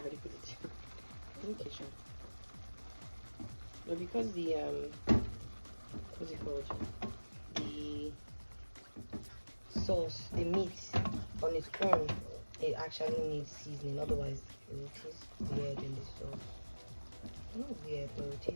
for it. In the kitchen. But because the what's it called? The sauce, the meat on its own, it actually needs seasoning. Otherwise, it will taste weird in the sauce. Not weird, but it will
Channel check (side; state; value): both; inverted; correlation -1.00